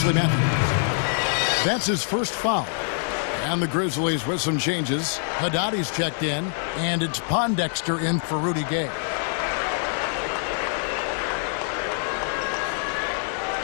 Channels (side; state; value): right; silent; digital silence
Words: Matthews. That's his first foul. And the Grizzlies with some changes. Haddadi's checked in. And it's Pondexter in for Rudy Gay.